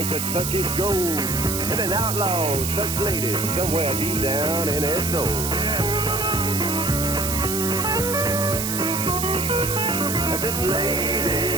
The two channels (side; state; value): right; noise; hiss, 3 dB below the sound